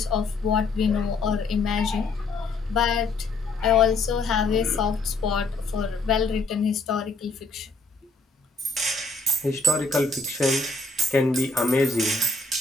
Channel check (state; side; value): quieter; right; 3.4 dB